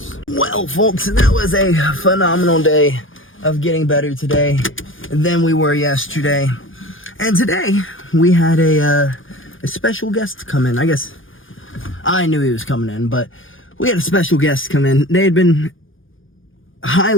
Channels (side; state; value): right; late; 0.58 ms